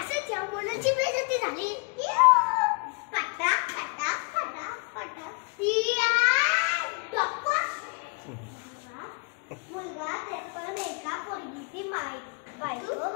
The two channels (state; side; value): quieter; right; 34.5 dB